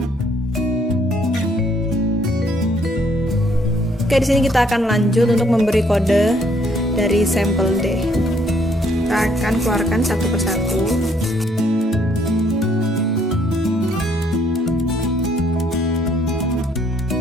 Oke, di sini kita akan lanjut untuk memberi kode dari sampel D. Kita akan keluarkan satu persatu.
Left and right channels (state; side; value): normal; both; correlation 0.66